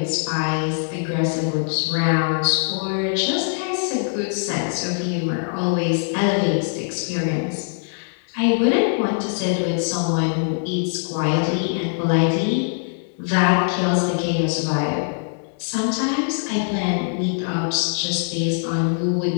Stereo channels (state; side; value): silent; right; digital silence